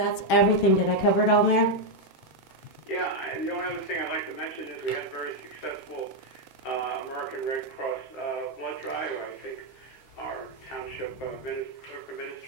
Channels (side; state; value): both; normal; correlation 0.01